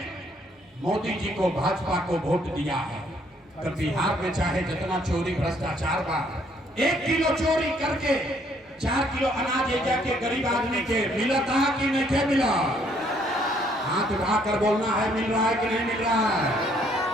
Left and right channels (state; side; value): normal; both; correlation 0.66